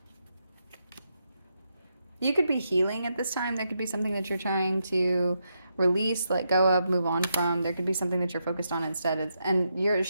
You could be healing at this time. There could be something that you're trying to release, let go of, move on from. There could be something that you're focused on instead. And you're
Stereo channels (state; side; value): inverted; both; correlation -0.83